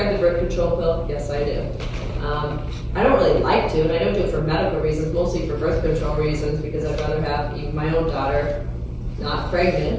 the birth control pill? Yes, I do. I don't really like to, and I don't do it for medical reasons, mostly for birth control reasons, because I'd rather have even my own daughter not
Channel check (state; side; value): identical; both; correlation 1.00